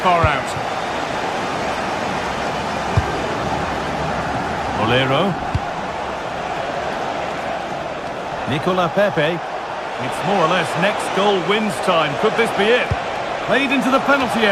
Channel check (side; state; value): both; identical; correlation 1.00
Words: far out. Molero. Nicola Pepe. It's more or less next goal wins time. Could this be it? Played into the penalty